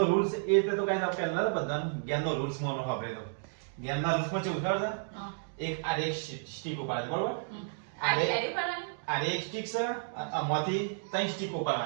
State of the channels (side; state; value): left; silent; digital silence